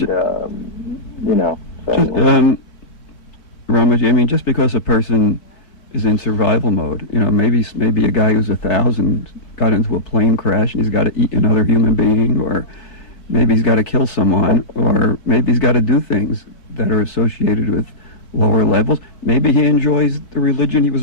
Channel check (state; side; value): late; right; 3.3 ms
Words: Ramaji, I mean, just because a person is in survival mode, maybe a guy who's 1,000 got into a plane crash and he's got to eat another human being, or maybe he's got to kill someone, or maybe he's got to do things that are associated with lower levels. Maybe he enjoys the religion he was